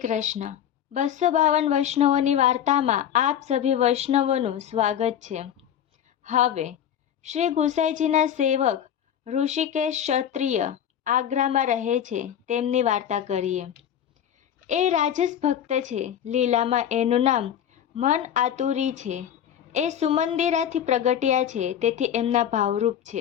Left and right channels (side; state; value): right; quieter; 9.7 dB